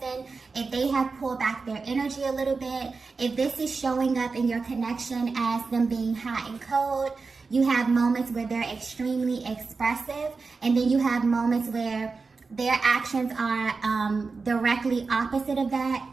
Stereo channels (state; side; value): quieter; left; 4.4 dB